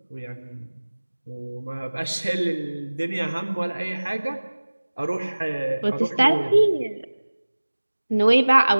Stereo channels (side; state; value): both; inverted; correlation -1.00